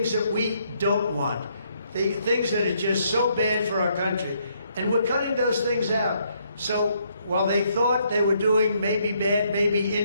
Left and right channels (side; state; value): both; inverted; correlation -0.72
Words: that we don't want. The things that are just so bad for our country. And we're cutting those things out. So while they thought they were doing maybe bad, maybe